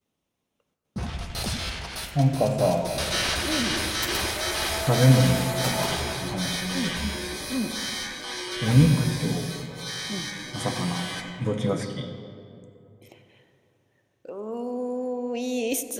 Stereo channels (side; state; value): both; identical; correlation 1.00